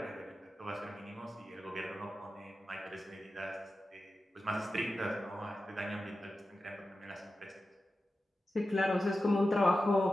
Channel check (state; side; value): normal; both; correlation 0.92